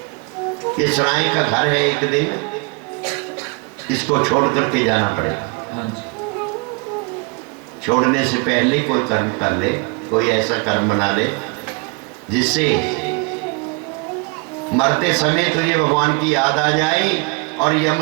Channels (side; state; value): left; quieter; 31.4 dB